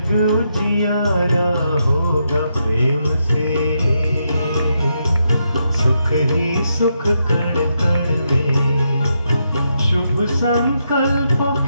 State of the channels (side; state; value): both; inverted; correlation -0.81